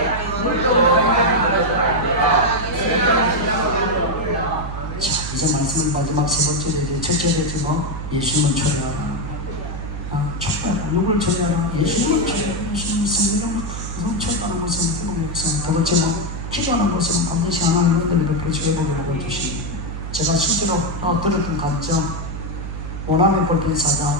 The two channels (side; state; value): right; noise; hum, 7 dB below the sound